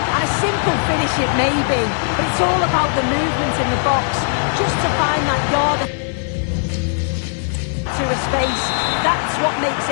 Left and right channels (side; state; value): right; silent; 63 dB below the other